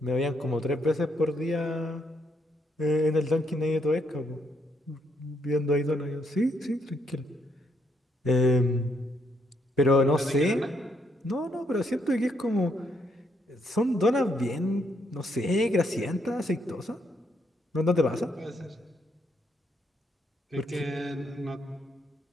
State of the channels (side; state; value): both; normal; correlation 0.74